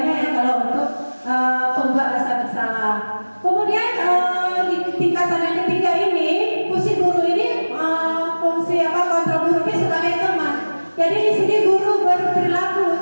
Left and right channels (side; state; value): both; inverted; correlation -1.00